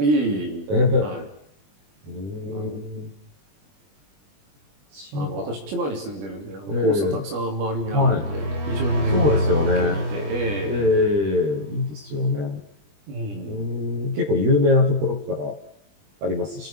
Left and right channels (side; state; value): left; late; 20 ms